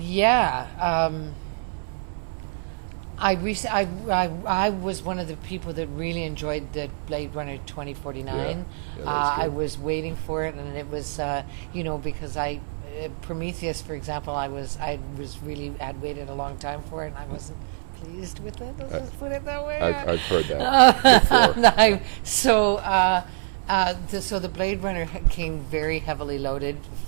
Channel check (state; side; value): silent; left; 57 dB below the other